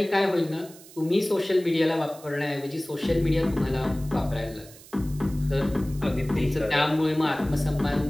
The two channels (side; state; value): right; noise; hiss, 20 dB below the sound